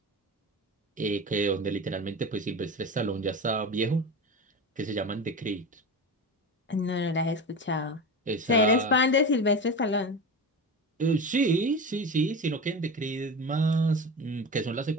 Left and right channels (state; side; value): normal; both; correlation 0.26